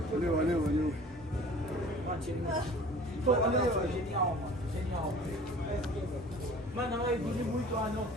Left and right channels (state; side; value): normal; both; correlation 0.45